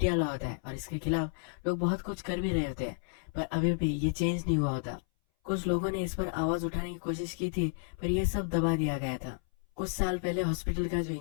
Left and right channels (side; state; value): right; silent; 56 dB below the other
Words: लॉ होता है और इसके खिलाफ लोग बहुत कुछ कर भी रहे होते हैं, पर अभी भी ये चेंज नहीं हुआ होता। कुछ लोगों ने इस पर आवाज उठाने की कोशिश की थी पर यह सब दबा दिया गया था। कुछ साल पहले हॉस्पिटल का जो